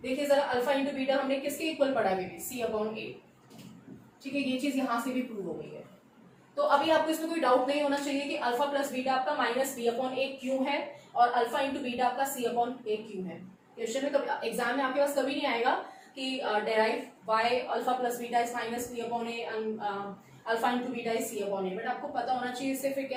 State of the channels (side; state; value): both; identical; correlation 1.00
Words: देखिए जरा अल्फा इंटू बीटा हमने किसके इक्वल पढ़ा है, सी अपॉन ए, ठीक है, ये चीज यहां से भी प्रूव हो गई है। तो अभी आपको इसमें कोई डाउट नहीं होना चाहिए कि अल्फा प्लस बीटा आपका माइनस बी अपॉन ए क्यों है और अल्फा इंटू बीटा आपका सी अपॉन ए क्यों है। क्वेश्चन में कभी एग्जाम में आपके पास कभी नहीं आएगा कि derive why alpha plus beta is minus b upon a and alpha into beta is c upon a, but आपको पता होना चाहिए, इससे फिर